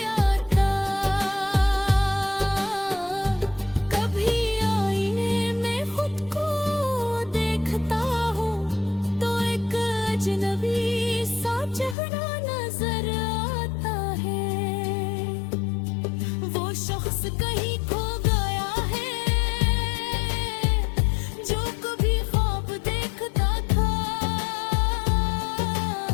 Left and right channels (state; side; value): drops out; right; at 12.0 s